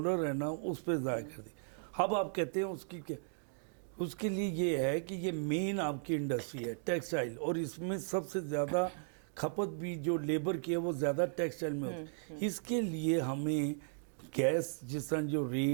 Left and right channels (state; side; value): silent; left; digital silence